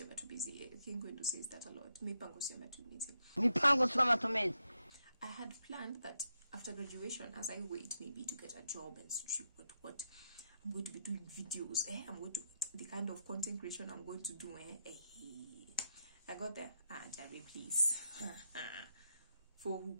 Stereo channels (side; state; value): both; inverted; correlation -0.82